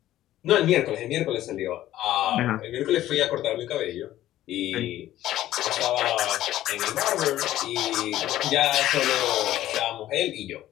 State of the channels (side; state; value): right; quieter; 13.8 dB